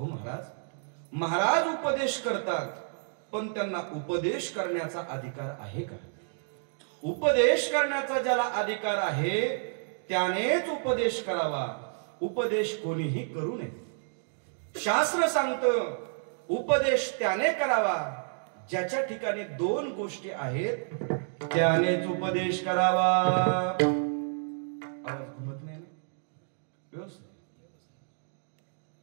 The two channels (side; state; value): left; silent; digital silence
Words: महाराज? महाराज उपदेश करतात, पण त्यांना उपदेश करण्याचा अधिकार आहे का? उपदेश करण्याचा ज्याला अधिकार आहे त्यानेच उपदेश करावा. उपदेश कोणीही करू नये. शास्त्र सांगतं उपदेश त्याने करावा ज्याच्या ठिकाणी 2 गोष्टी आहेत, त्यानेच उपदेश करावा. आवाज घुमत नाही ना व्यवस्थित?